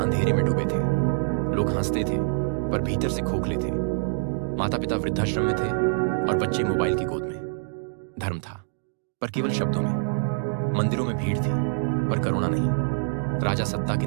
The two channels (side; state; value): left; silent; digital silence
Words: में डूबे थे। लोग हंसते थे पर भीतर से खोखले थे। माता पिता वृद्धाश्रम में थे और बच्चे मोबाइल की गोद में। धर्म था पर केवल शब्दों में। मंदिरों में भीड़ थी पर करुणा नहीं। राजा सत्ता के